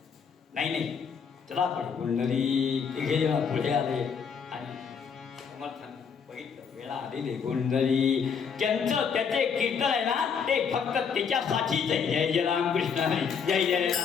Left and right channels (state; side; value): quieter; right; 6.5 dB